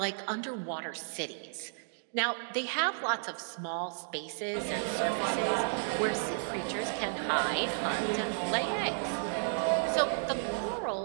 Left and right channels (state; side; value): silent; left; digital silence